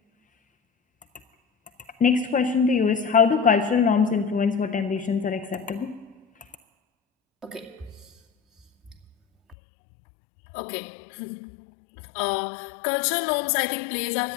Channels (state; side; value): drops out; right; at 9.6 s